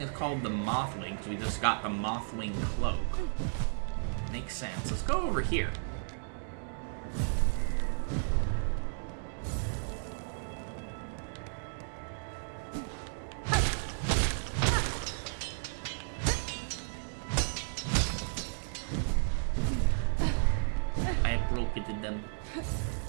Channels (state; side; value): silent; left; digital silence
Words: called the Mothwing, so we just got the Mothwing cloak. Makes sense. Let's go over here. I have broken them.